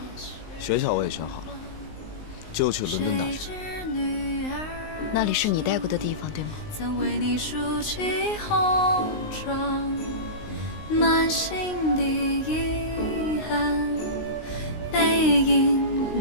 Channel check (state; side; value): late; right; 19 ms